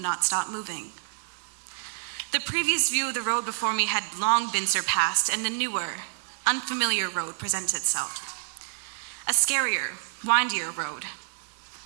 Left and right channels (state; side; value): silent; left; digital silence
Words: not stop moving. The previous view of the road before me had long been surpassed, and a newer, unfamiliar road presented itself. A scarier, windier road.